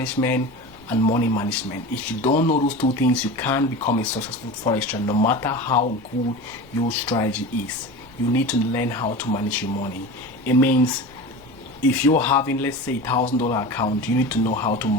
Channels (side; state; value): left; noise; rumble, 28 dB below the sound